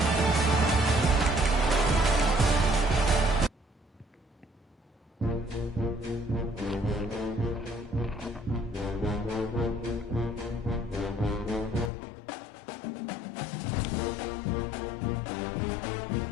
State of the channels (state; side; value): drops out; right; at 11.9 s